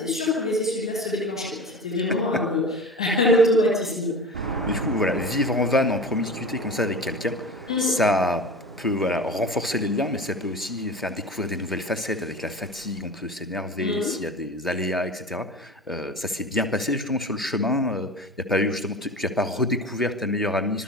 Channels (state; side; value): normal; both; correlation 0.33